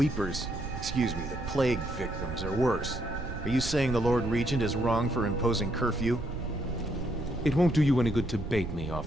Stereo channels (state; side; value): noise; right; rumble, 8 dB below the sound